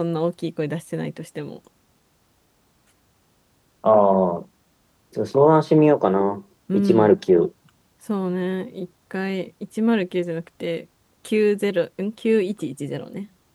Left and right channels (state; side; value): identical; both; correlation 1.00